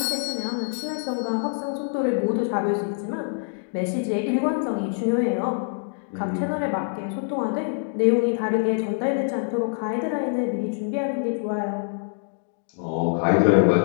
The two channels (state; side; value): silent; right; 62 dB below the other